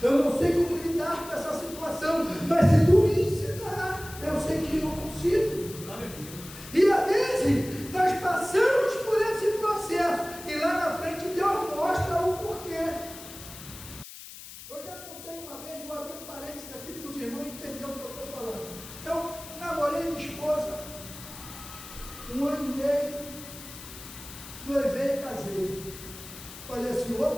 Eu não sei como lidar com essa situação, mas se tu me ensinar, eu sei que eu consigo. E às vezes nós passamos por esse processo e lá na frente Deus mostra o porquê. Eu já contei uma vez, vou abrir um parênteses aqui para os irmãos entenderem o que eu estou falando. Eu namorei minha esposa 1 ano e meio, noivei e casei. Falei assim,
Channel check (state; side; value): noise; left; hiss, 14 dB below the sound